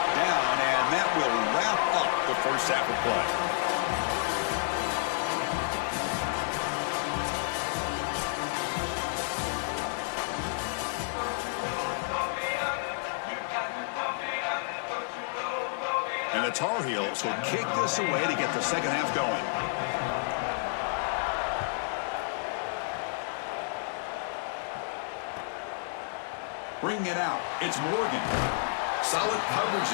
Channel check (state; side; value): silent; right; 58 dB below the other